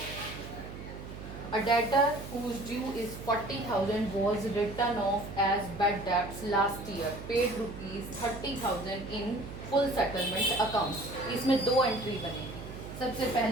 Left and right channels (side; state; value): right; noise; hum, 11 dB below the sound